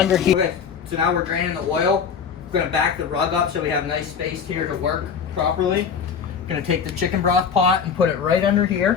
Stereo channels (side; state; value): right; quieter; 6.7 dB